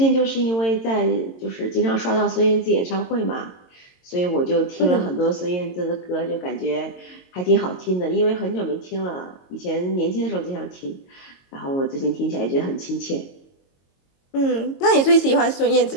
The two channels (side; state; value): right; late; 22 ms